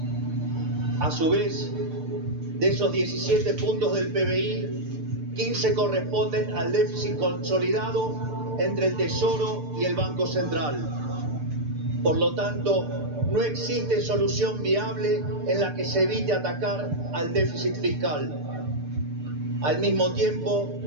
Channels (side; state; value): left; late; 6.8 ms